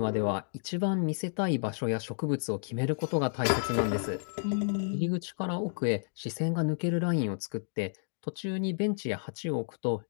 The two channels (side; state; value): right; silent; digital silence